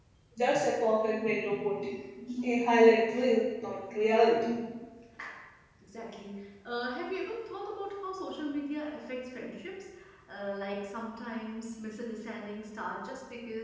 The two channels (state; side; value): identical; both; correlation 1.00